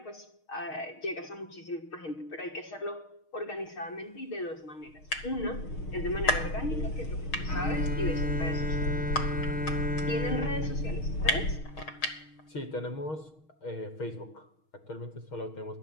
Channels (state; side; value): late; right; 6.4 ms